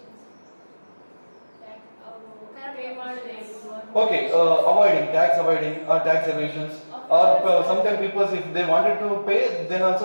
Okay, avoiding tax or tax evasions, or sometimes people, if they wanted to pay, then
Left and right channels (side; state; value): both; inverted; correlation -1.00